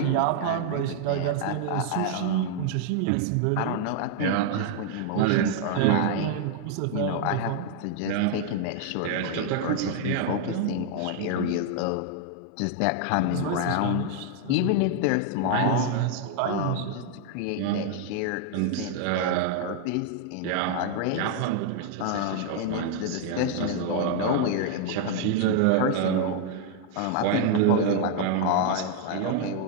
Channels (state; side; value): different; both; correlation 0.00